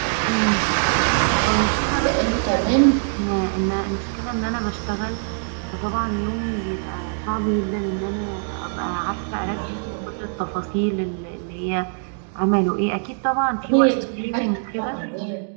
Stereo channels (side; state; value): left; silent; 64 dB below the other